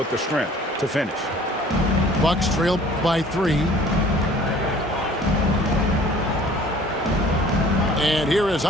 the strength to finish. Bucks trail by 3. And here is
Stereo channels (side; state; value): both; normal; correlation 0.51